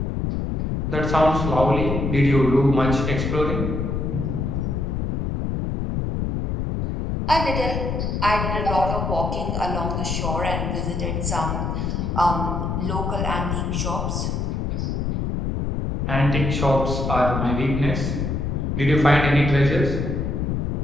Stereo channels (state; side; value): noise; left; rumble, 1 dB below the sound